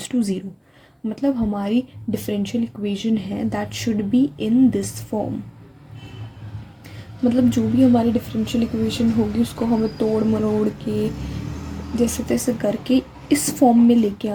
to 0. मतलब हमारी differential equation है that should be in this form. मतलब जो भी हमारी differential equation होगी उसको हमें तोड़ मरोड़ के जैसे तैसे करके इस फॉर्म में लेके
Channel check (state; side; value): identical; both; correlation 1.00